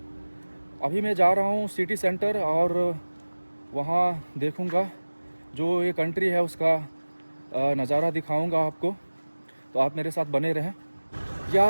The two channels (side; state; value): both; inverted; correlation -1.00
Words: अभी मैं जा रहा हूँ सिटी सेंटर और वहाँ देखूँगा, जो ये कंट्री है उसका नज़ारा दिखाऊँगा आपको। तो आप मेरे साथ बने रहें।